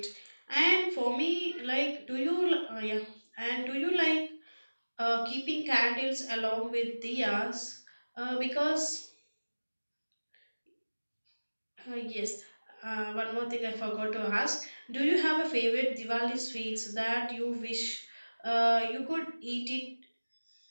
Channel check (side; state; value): both; inverted; correlation -1.00